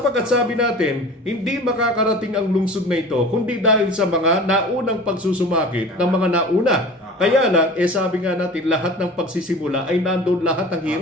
sabi natin, hindi makakarating ang lungsod na ito kundi dahil sa mga naunang pagsusumakit ng mga nauna. Kaya lang, sabi nga natin, lahat ng pagsisimula ay nandoon lahat ng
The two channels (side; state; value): both; normal; correlation 0.39